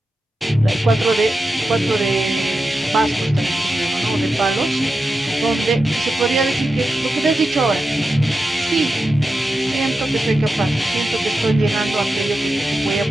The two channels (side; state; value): both; normal; correlation 0.90